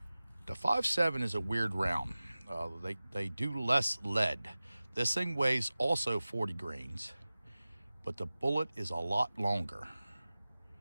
the 5.7 is a weird round. They do less lead. This thing weighs also 40 grains, but the bullet is a lot longer.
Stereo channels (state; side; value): inverted; both; correlation -0.97